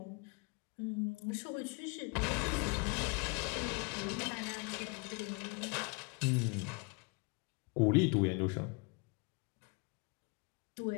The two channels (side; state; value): right; quieter; 31.1 dB